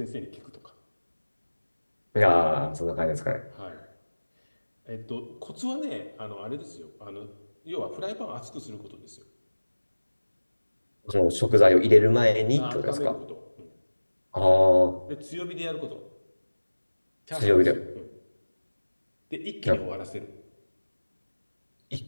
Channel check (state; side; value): inverted; both; correlation -1.00